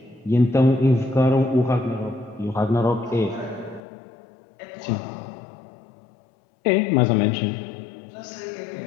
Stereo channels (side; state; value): right; drops out; at 3.8 s